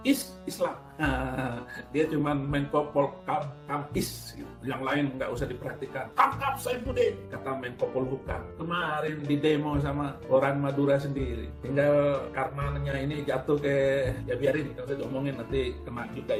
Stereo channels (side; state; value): both; identical; correlation 1.00